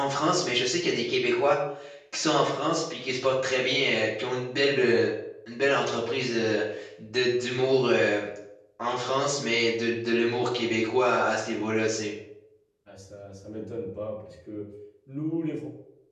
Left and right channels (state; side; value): identical; both; correlation 1.00